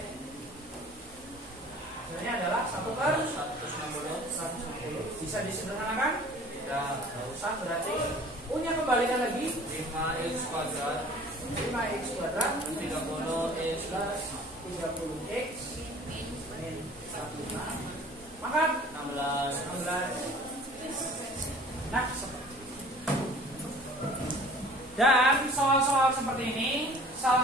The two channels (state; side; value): normal; both; correlation 0.48